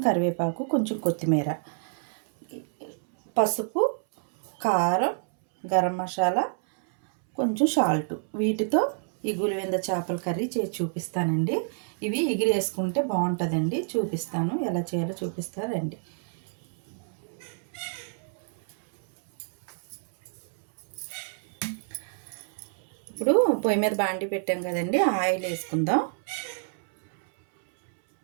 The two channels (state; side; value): silent; left; 59 dB below the other